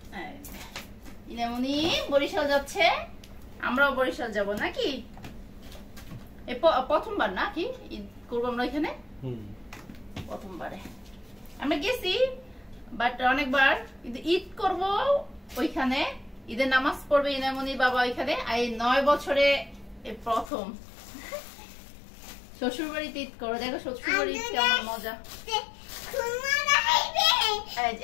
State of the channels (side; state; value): right; drops out; at 20.5 s